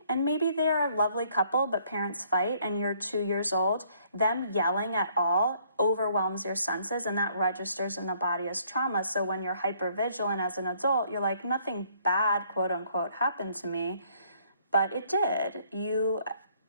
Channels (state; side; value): inverted; both; correlation -0.64